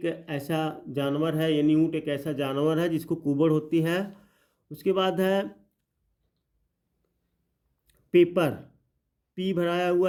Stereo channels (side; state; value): both; identical; correlation 1.00